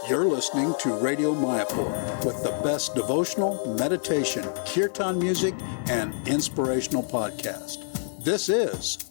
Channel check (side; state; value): right; silent; digital silence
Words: You're listening to Radio Mayapur with the best devotional, meditation, kirtan music, and inspirational podcast. This